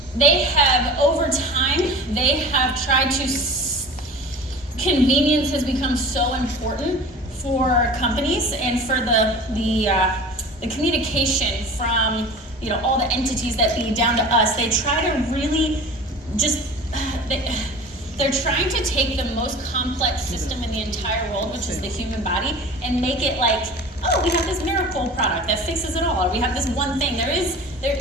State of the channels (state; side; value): normal; both; correlation 0.39